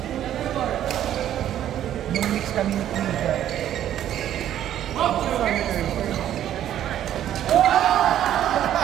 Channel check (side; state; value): left; quieter; 11.4 dB